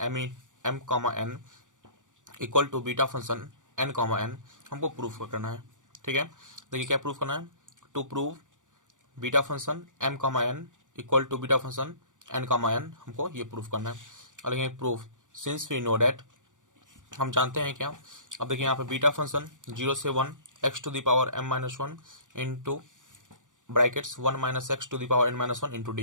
M comma N equal to beta function N comma N हमको प्रूफ करना है। ठीक है, देखिए क्या प्रूफ करना है। To prove beta function M comma N equal to beta function N comma N, हमको ये प्रूफ करना है। और देखिए proof since we know that, हम जानते हैं क्या। अब देखिए यहाँ पे बीटा फंक्शन जीरो से one X to the power M minus one into brackets one minus x to the power N minus one into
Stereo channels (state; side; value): late; left; 0.87 ms